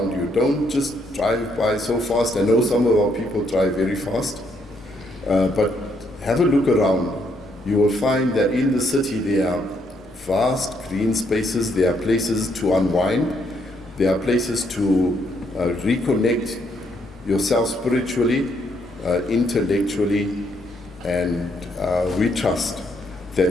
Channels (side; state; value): both; normal; correlation 0.73